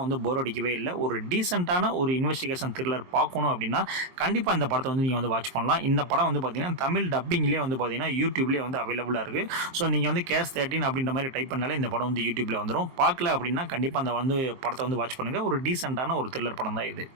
வந்து போர் அடிக்கவே இல்லை. ஒரு டீசென்ட்டான ஒரு இன்வெஸ்டிகேஷன் த்ரில்லர் பார்க்கணும் அப்படின்னா கண்டிப்பாக இந்த படத்தை வந்து நீங்கள் வந்து வாட்ச் பண்ணலாம். இந்த படம் வந்து பார்த்தீங்கன்னா தமிழ் டப்பிங்லேயே வந்து பார்த்தீங்கன்னா யூடியூப்லேயே வந்து அவைலபிளாக இருக்குது. ஸோ நீங்கள் வந்து கேஸ் 13 அப்படின்ற மாதிரி டைப் பண்ணாலே இந்த படம் வந்து யூடியூப்பில் வந்துடும். பார்க்கல அப்படின்னா கண்டிப்பாக அந்த வந்து படத்தை வந்து வாட்ச் பண்ணுங்கள். ஒரு டீசென்ட்டான ஒரு த்ரில்லர் படம் தான் இது.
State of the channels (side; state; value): left; late; 23 ms